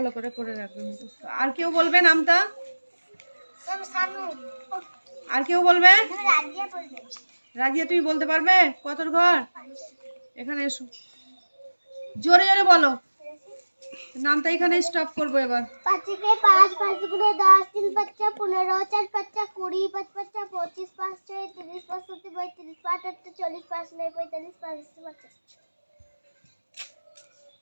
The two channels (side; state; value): both; inverted; correlation -1.00